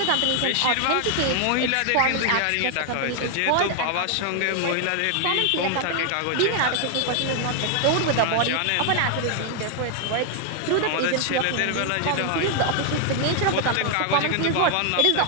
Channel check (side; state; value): both; different; correlation 0.00